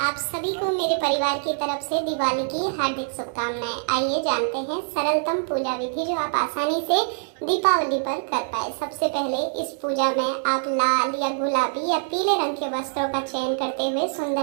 सभी को मेरे परिवार की तरफ से दिवाली की हार्दिक शुभकामनाएं। आइए जानते हैं सरलतम पूजा विधि जो आप आसानी से दीपावली पर कर पाए। सबसे पहले इस पूजा में आप लाल या गुलाबी या पीले रंग के वस्त्रों का चयन करते हुए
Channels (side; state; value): left; silent; digital silence